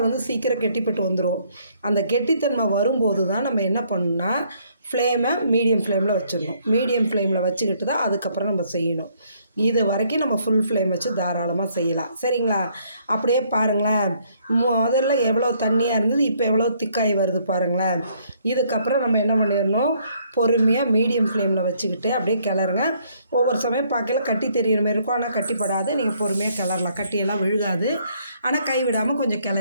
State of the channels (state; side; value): inverted; both; correlation -0.67